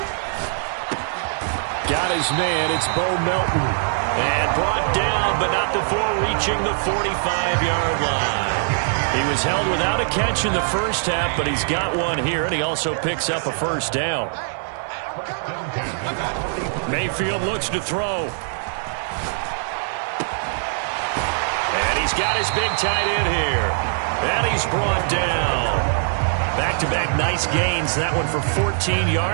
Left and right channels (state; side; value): silent; left; digital silence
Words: Got his man. It's Bo Melton. And brought down, but not before reaching the 45-yard line. He was held without a catch in the first half, but he's got one here, and he also picks up a first down. Mayfield looks to throw. And he's got his big tight end here. And he's brought down. Back-to-back nice gains. That one for 14